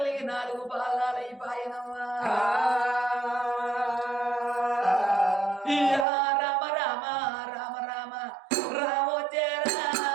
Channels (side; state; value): left; drops out; at 6.1 s